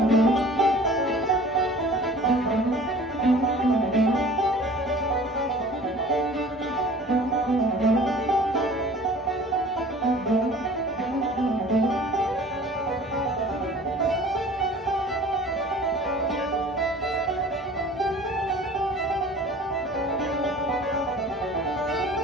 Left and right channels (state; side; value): normal; both; correlation 0.46